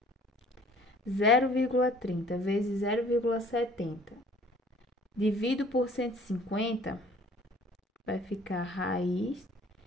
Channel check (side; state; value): both; normal; correlation 0.54